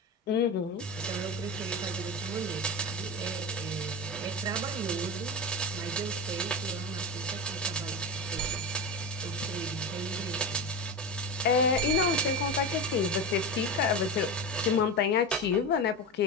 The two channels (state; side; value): normal; both; correlation 0.21